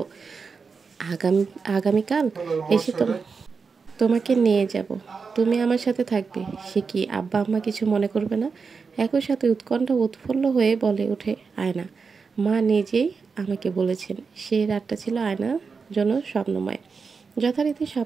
আগামী আগামীকাল এসে তোমাকে নিয়ে যাব, তুমি আমার সাথে থাকবে। সে কি আব্বা আম্মা কিছু মনে করবে না? একই সাথে উৎকণ্ঠা উৎফুল্ল হয়ে বলে ওঠে আয়না। মা নিজেই আমাকে বলেছেন সেই রাতটা ছিল আয়নার জন্য স্বপ্নময়। যথারীতি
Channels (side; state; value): left; quieter; 5.1 dB